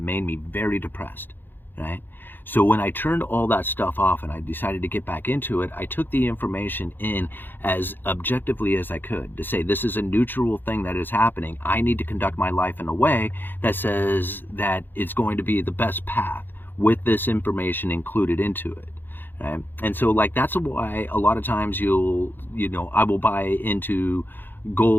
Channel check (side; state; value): right; late; 0.094 ms